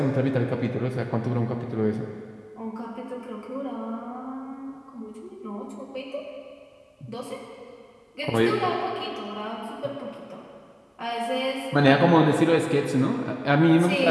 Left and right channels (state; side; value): identical; both; correlation 1.00